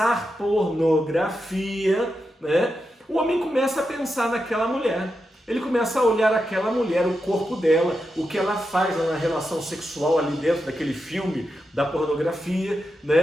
pornografia, né? O homem começa a pensar naquela mulher. Ele começa a olhar aquela mulher, o corpo dela, o que ela faz na relação sexual ali dentro daquele filme da pornografia,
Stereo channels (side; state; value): both; normal; correlation 0.87